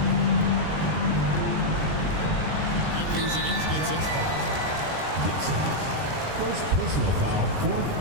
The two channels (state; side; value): late; left; 20 ms